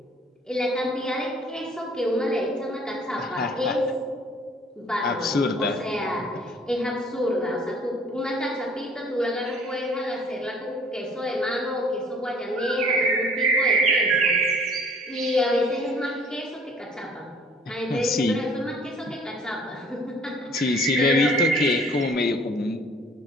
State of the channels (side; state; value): both; normal; correlation 0.54